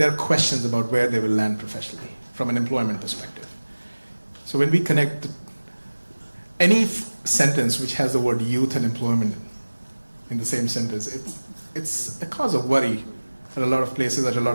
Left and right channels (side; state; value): both; inverted; correlation -1.00